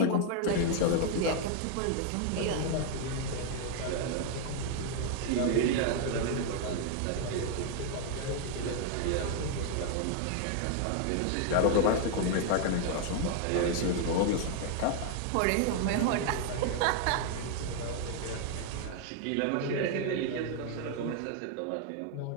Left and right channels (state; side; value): different; both; correlation 0.00